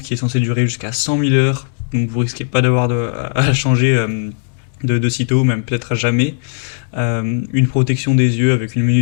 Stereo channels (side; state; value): right; silent; digital silence